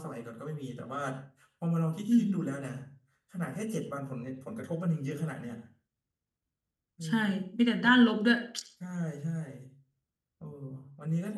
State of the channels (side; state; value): both; identical; correlation 1.00